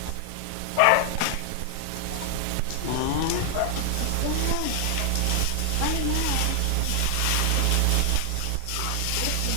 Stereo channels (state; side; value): different; both; correlation 0.00